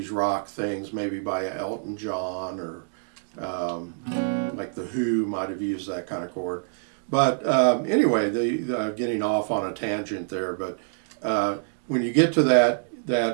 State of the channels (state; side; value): silent; left; digital silence